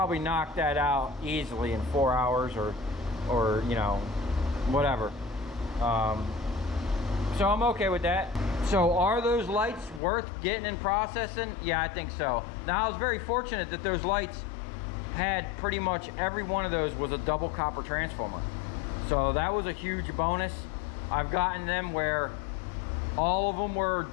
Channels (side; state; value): right; drops out; at 10.0 s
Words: knocked that out easily in 4 hours or you know, whatever. So I'm okay with that. So are those lights worth getting and processing? Yeah, I think so. Now I was very fortunate that those lights had pretty much every one of those was a double copper transformer. So that was a huge bonus. I've gotten them where all of them were